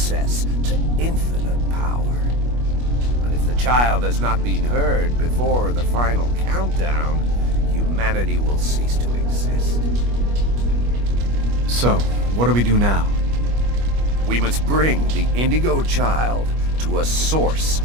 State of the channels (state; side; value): late; left; 25 ms